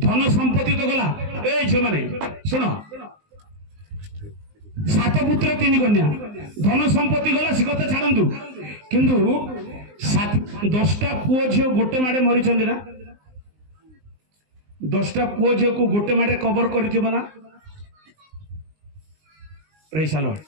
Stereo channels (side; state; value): left; late; 19 ms